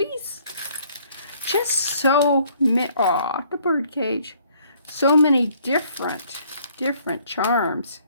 Just so many. Aw, the bird cage. So many different charms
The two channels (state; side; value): inverted; both; correlation -0.62